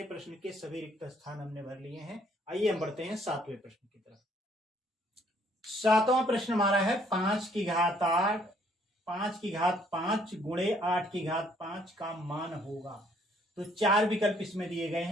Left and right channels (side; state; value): both; normal; correlation 0.64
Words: प्रश्न के सभी रिक्त स्थान हमने भर लिए हैं। आइए हम बढ़ते हैं 7वें प्रश्न की तरफ। 7वां प्रश्न हमारा है 5 की घात 8, 5 की घात 5 गुणे 8 की घात 5 का मान होगा। तो 4 विकल्प इसमें दिए गए